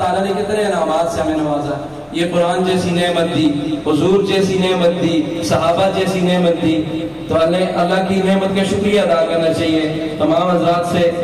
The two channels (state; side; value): identical; both; correlation 1.00